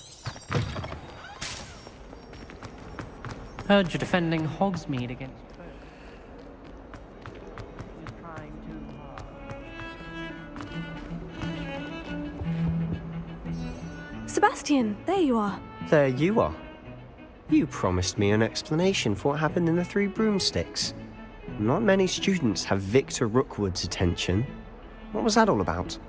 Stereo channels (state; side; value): identical; both; correlation 1.00